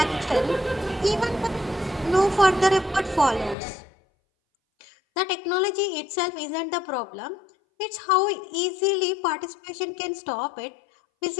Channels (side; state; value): right; drops out; at 3.6 s